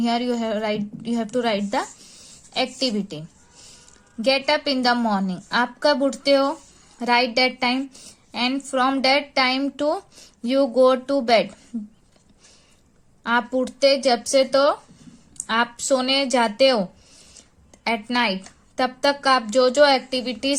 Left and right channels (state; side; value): identical; both; correlation 1.00